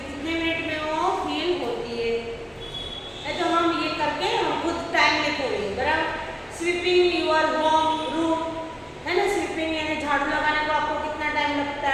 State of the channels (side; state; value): both; identical; correlation 1.00